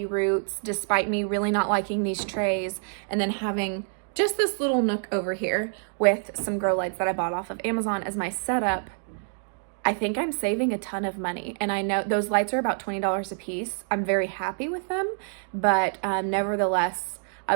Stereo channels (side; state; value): left; silent; digital silence